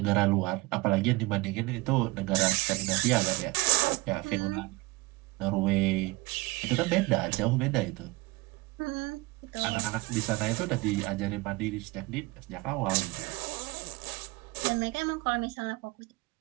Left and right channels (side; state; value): left; quieter; 22.6 dB